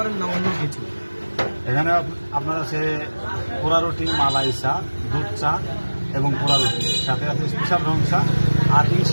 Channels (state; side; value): inverted; both; correlation -1.00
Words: না অন্য কিছু? এখানে আপনার আছে পোড়া রুটি, মালাই চা, দুধ চা এবং পোড়া রুটি, সাথে আছে স্পেশাল রং চা। আর